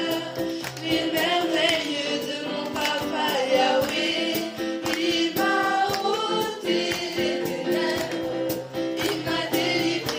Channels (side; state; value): both; identical; correlation 1.00